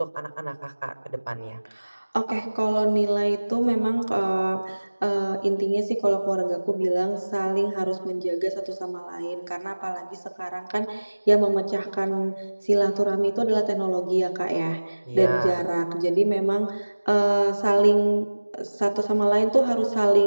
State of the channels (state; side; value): inverted; both; correlation -1.00